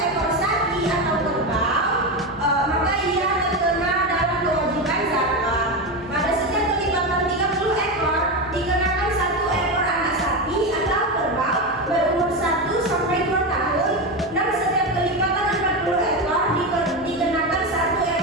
sapi atau kerbau, maka ia terkena dalam kewajiban zakat. Pada setiap kelipatan 30 ekor dikenakan 1 ekor anak sapi atau kerbau berumur 1 sampai 2 tahun, dan setiap kelipatan 40 ekor dikenakan 1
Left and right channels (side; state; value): both; normal; correlation 0.16